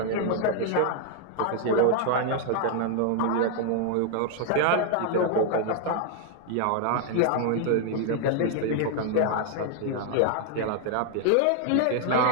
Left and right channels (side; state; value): both; different; correlation 0.00